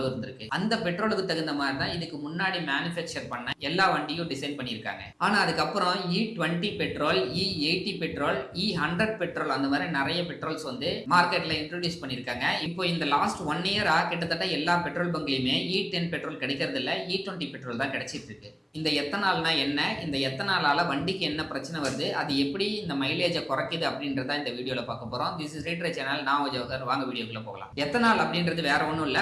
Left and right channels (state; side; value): identical; both; correlation 1.00